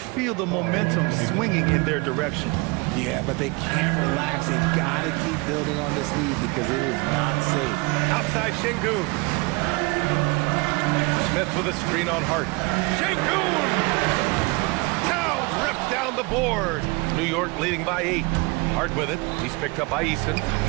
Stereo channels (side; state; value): left; quieter; 26.9 dB